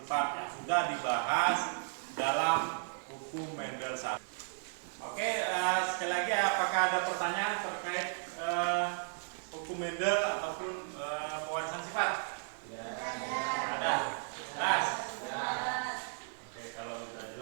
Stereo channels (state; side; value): silent; left; digital silence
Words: yang sudah dibahas dalam hukum Mendel 1. Oke, sekali lagi apakah ada pertanyaan terkait hukum Mendel ataupun pewarisan sifat? Ya. Ada. Jelas? Ya. Oke, kalau sudah